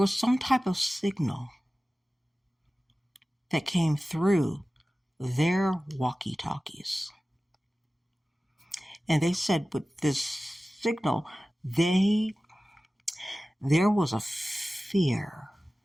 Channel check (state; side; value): normal; both; correlation 0.96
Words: some type of signal that came through their walkie-talkies. And they said with this signal, there was a fear